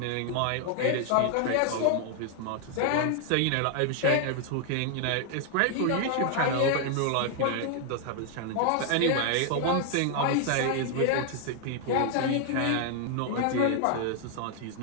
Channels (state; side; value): different; both; correlation 0.00